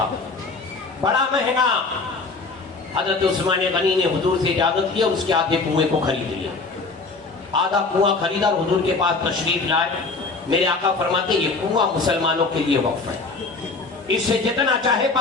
بڑا مہنگا۔ حضرت عثمان غنی نے حضور سے اجازت لیا، اس کے آدھے کنویں کو خرید لیا، آدھا کنواں خریدا اور حضور کے پاس تشریف لائے۔ میرے آقا فرماتے یہ کنواں مسلمانوں کے لیے وقف ہے، اس سے جتنا چاہے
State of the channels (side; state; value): right; quieter; 3.9 dB